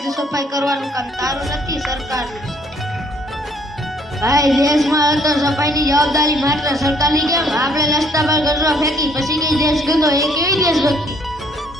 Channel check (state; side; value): normal; both; correlation 0.63